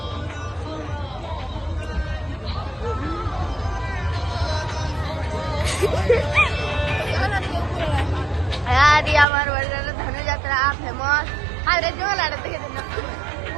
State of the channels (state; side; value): drops out; left; at 9.2 s